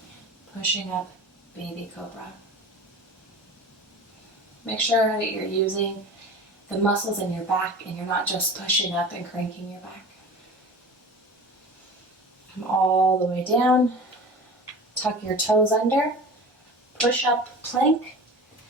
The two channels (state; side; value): normal; both; correlation 0.36